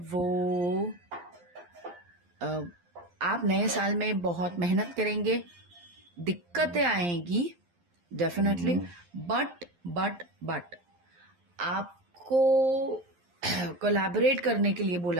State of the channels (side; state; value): left; late; 11 ms